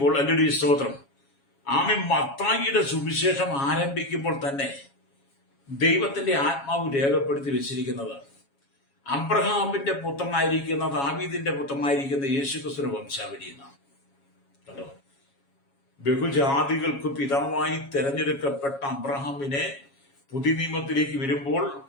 ഹല്ലേലൂയ, സ്തോത്രം, ആമേൻ, മത്തായിയുടെ സുവിശേഷം ആരംഭിക്കുമ്പോൾ തന്നെ ദൈവത്തിന്റെ ആത്മാവ് രേഖപ്പെടുത്തി വെച്ചിരിക്കുന്നത് അബ്രഹാമിന്റെ പുത്രനായിരിക്കുന്ന, ദാവീദിന്റെ പുത്രനായിരിക്കുന്ന യേശുക്രിസ്തുവിന്റെ വംശാവലി എന്നാണ്. കണ്ടോ? ബഹുജാതികൾക്ക് പിതാവായി തെരഞ്ഞെടുക്കപ്പെട്ട അബ്രഹാമിനെ പുതിയ നിയമത്തിലേക്ക് വരുമ്പോൾ,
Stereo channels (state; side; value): late; right; 7.3 ms